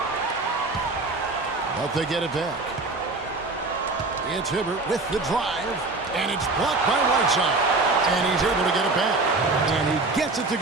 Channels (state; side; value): quieter; left; 3.4 dB